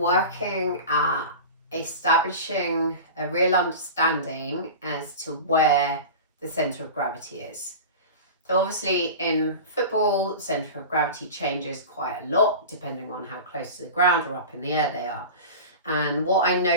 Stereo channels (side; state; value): both; inverted; correlation -0.31